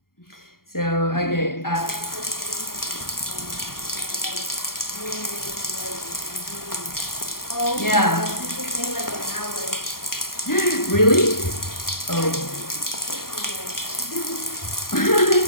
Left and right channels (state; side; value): late; right; 0.92 ms